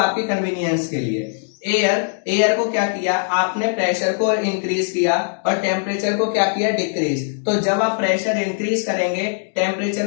कन्वीनियंस के लिए। एयर को क्या किया, आपने प्रेशर को इंक्रीज किया और टेम्परेचर को क्या किया, डिक्रीज। तो जब आप प्रेशर इंक्रीज करेंगे,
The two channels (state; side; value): silent; right; digital silence